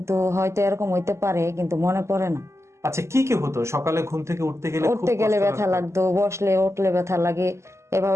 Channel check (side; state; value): left; late; 0.13 ms